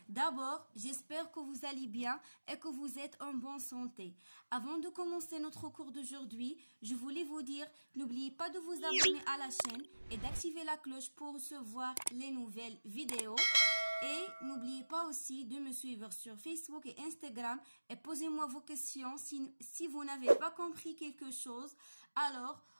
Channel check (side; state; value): both; inverted; correlation -1.00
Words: D'abord, j'espère que vous allez bien et que vous êtes en bonne santé. Avant de commencer notre cours d'aujourd'hui, je voulais vous dire, n'oubliez pas de vous abonner à la chaîne et d'activer la cloche pour recevoir les nouvelles vidéos. Et n'oubliez pas aussi de me suivre sur Facebook et Instagram et posez-moi vos questions si vous n'avez pas compris quelque chose. Alors,